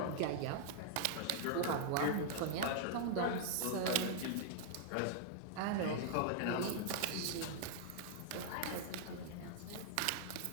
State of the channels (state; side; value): different; both; correlation -0.01